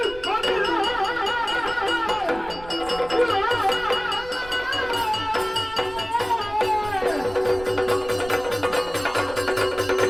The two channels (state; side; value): noise; right; rumble, 16 dB below the sound